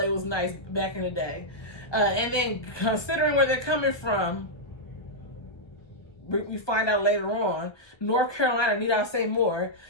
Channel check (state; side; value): late; right; 1.2 ms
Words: was nice back in the day. And then considering where they're coming from, we find out later on, North Carolina, need I say more,